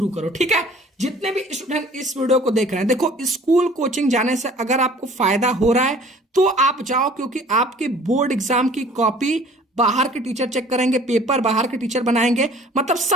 करो, ठीक है। जितने भी स्टूडेंट इस वीडियो को देख रहे हैं, देखो स्कूल कोचिंग जाने से अगर आपको फायदा हो रहा है तो आप जाओ, क्योंकि आपके बोर्ड एग्जाम की कॉपी बाहर के टीचर चेक करेंगे, पेपर बाहर के टीचर बनाएंगे, मतलब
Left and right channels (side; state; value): both; normal; correlation 0.51